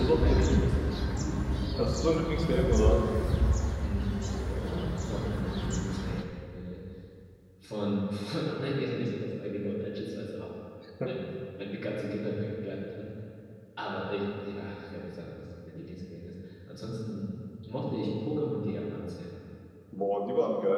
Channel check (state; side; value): identical; both; correlation 1.00